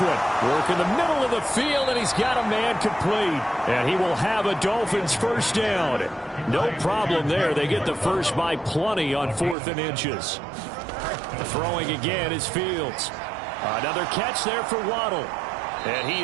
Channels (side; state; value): left; drops out; at 9.6 s